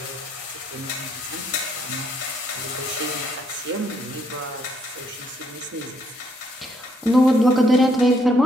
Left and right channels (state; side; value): normal; both; correlation 0.71